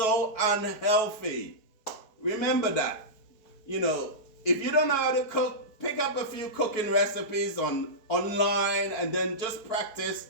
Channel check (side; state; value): right; late; 4.7 ms